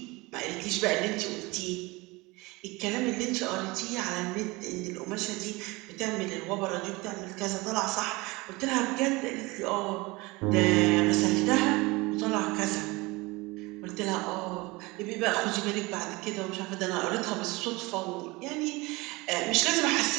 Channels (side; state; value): left; quieter; 23.4 dB